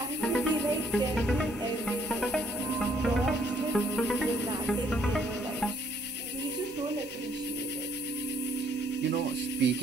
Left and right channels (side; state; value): both; normal; correlation 0.66